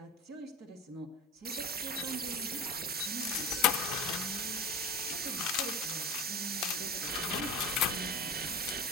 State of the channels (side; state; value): both; normal; correlation 0.30